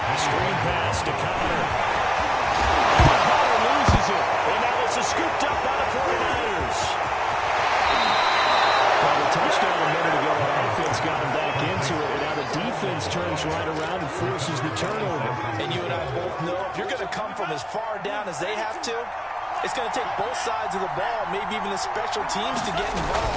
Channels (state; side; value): identical; both; correlation 1.00